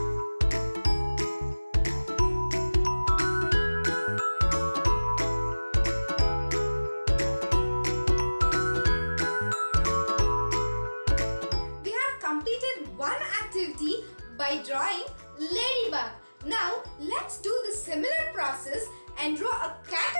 We have completed one activity by drawing ladybug. Now let's do the similar process and draw a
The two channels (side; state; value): both; inverted; correlation -1.00